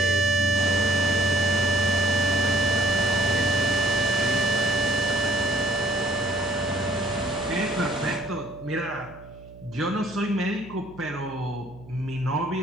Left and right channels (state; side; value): noise; right; hum, 20 dB below the sound